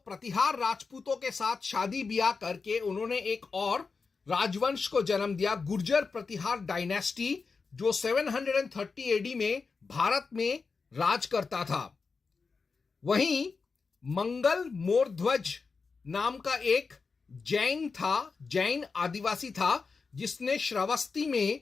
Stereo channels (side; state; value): right; quieter; 4.7 dB